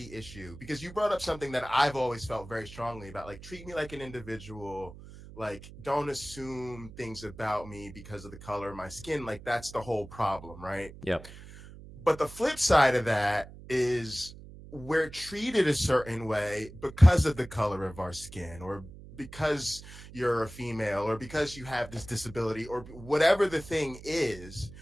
issue, because you brought up something that I've always felt very strongly about, like, treat me like an individual. Like, don't assume things about me because of the color of my skin. Like, that's the whole problem, right? Yep. But the flip side of that is we're treated a certain way because of the color of our skin, or because you're a female, or because you have this disability, or whatever the thing is,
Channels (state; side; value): noise; right; hum, 16 dB below the sound